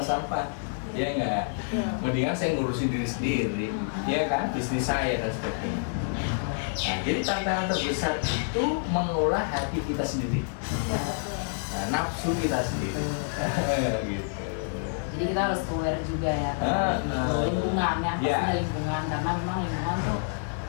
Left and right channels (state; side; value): silent; right; 59 dB below the other